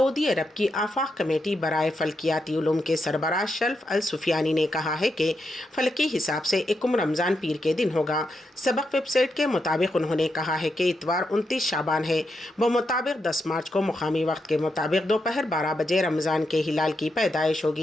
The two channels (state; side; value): normal; both; correlation 0.83